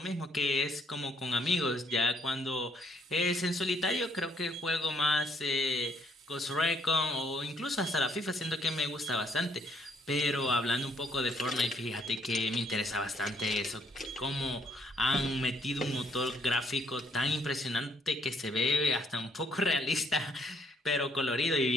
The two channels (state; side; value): normal; both; correlation 0.68